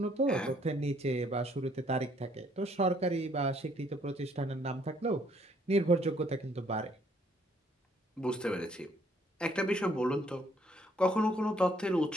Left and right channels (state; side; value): normal; both; correlation 0.65